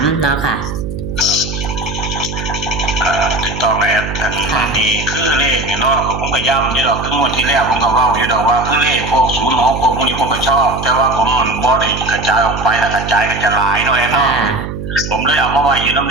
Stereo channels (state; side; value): noise; right; hum, 7 dB below the sound